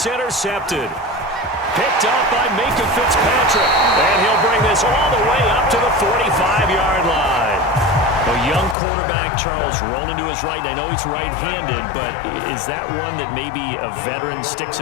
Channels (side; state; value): right; drops out; at 8.8 s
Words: intercepted. Picked up by Minka Fitzpatrick. And he'll bring this all the way up to the 45-yard line. A young quarterback, Charles, rolling to his right. I know he's right-handed, but is that one that maybe a veteran sticks